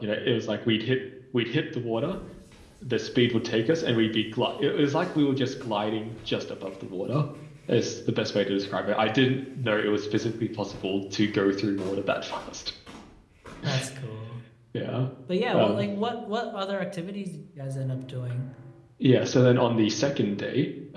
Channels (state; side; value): identical; both; correlation 1.00